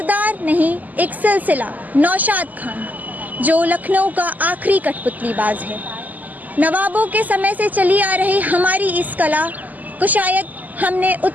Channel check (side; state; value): left; late; 0.081 ms